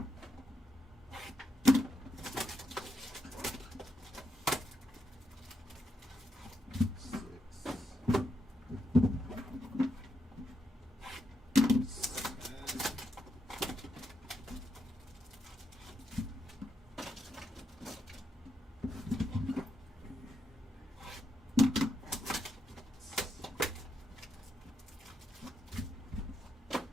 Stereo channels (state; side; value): normal; both; correlation 0.82